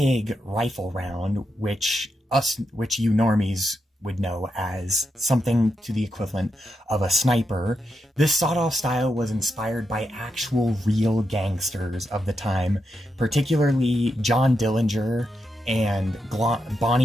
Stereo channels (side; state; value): both; normal; correlation 0.84